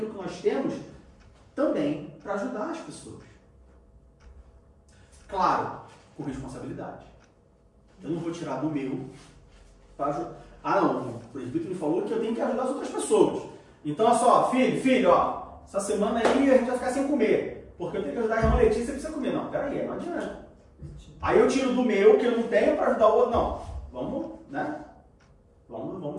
que nós temos, também para ajudar as pessoas. Claro, com responsabilidade. Eu não vou tirar do meu para ajudar. Ah não, o presbítero me falou que eu tenho que ajudar as outras pessoas. Então, olha só, filho, ó, essa semana aí a gente vai ficar sem comer, porque eu tenho que ajudar a irmã Letícia, você precisa comer. Não, peraí, não adianta. Aí eu tiro do meu, que eu não tenho, para ajudar o outro. Não, vamos, né?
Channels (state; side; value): identical; both; correlation 1.00